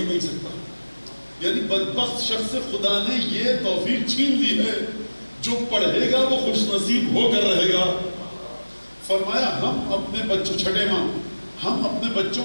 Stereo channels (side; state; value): both; inverted; correlation -1.00